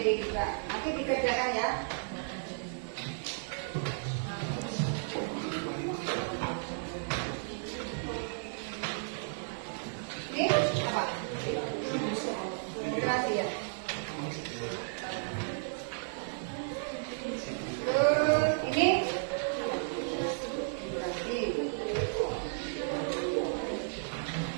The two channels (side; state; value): left; silent; digital silence